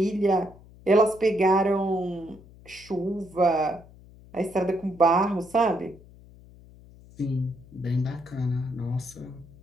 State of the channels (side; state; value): left; noise; hum, 22 dB below the sound